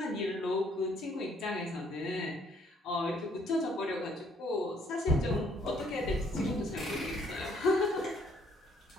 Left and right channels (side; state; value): both; normal; correlation 0.65